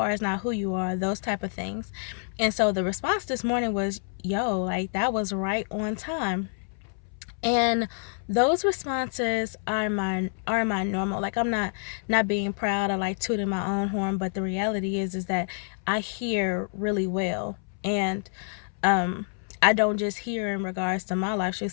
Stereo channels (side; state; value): right; silent; 60 dB below the other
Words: is not who you are, those type of things. And so the response this morning was, yo, like that was right on time. And those responses are my normal. Like, I'm not being proud or like tooting my own horn, but the reality is that I hear really well. And I don't just hear in regards to my life.